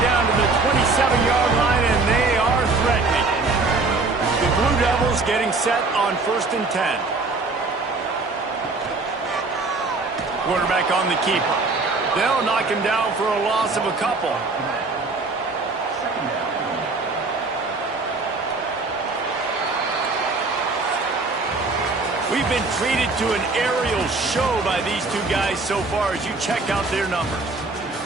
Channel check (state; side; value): quieter; left; 3.6 dB